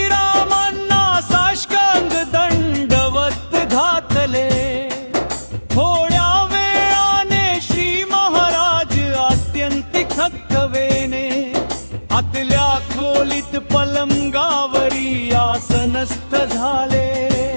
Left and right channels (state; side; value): inverted; both; correlation -1.00